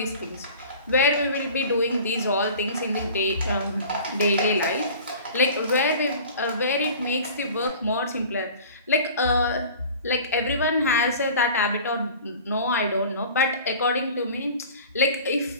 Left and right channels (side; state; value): both; inverted; correlation -0.42